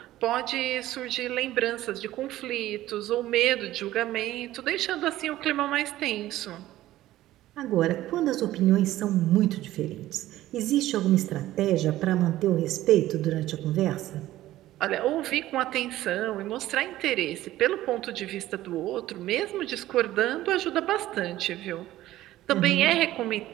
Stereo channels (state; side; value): quieter; left; 14.9 dB